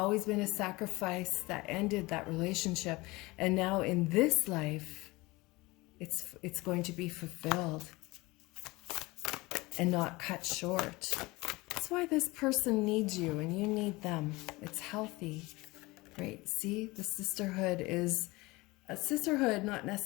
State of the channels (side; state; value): right; quieter; 22.2 dB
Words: been a sacrifice that ended that relationship. And now in this life, it's going to be fulfilled and not cut short. That's why this person needs you and you need them. It's healthy, right? See, the sisterhood is a sisterhood, not